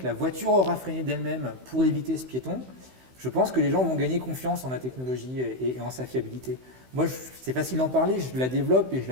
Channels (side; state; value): left; late; 16 ms